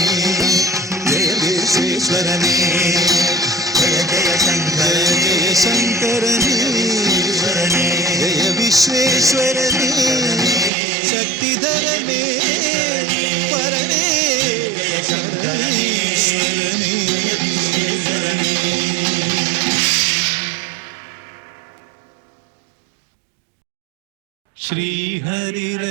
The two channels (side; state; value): left; drops out; at 10.7 s